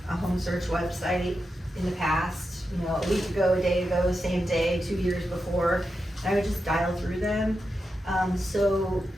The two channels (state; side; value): normal; both; correlation 0.88